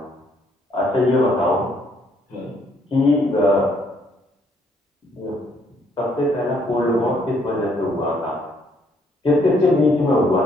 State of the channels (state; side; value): normal; both; correlation 0.68